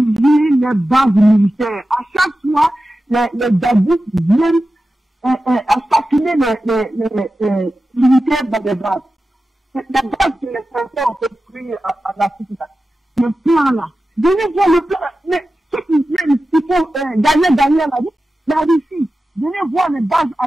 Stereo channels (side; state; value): both; normal; correlation 0.93